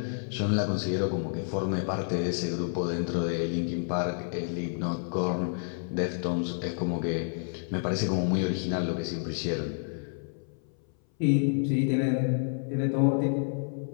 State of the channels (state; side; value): silent; right; 58 dB below the other